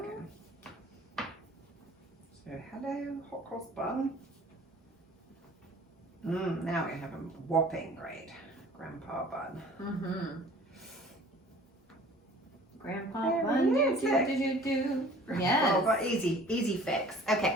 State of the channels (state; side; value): normal; both; correlation 0.49